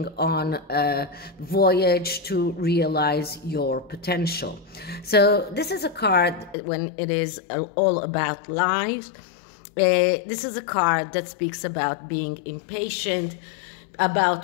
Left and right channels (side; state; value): right; drops out; at 6.6 s